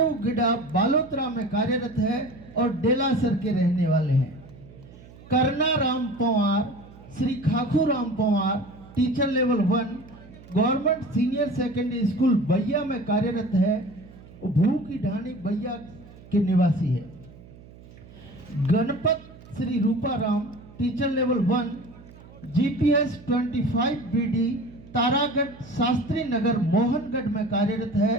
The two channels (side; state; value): right; noise; hum, 20 dB below the sound